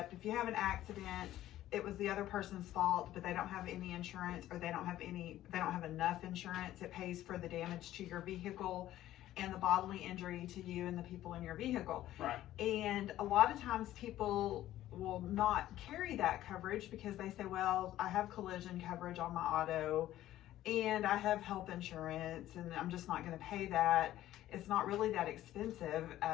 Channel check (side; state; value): right; quieter; 13.8 dB